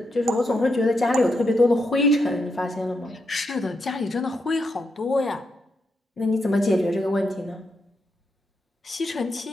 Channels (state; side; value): normal; both; correlation 0.82